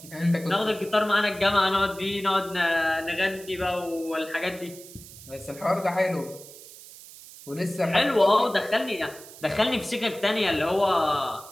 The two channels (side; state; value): right; noise; hiss, 18 dB below the sound